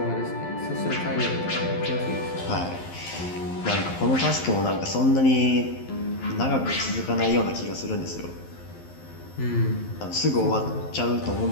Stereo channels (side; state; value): right; late; 11 ms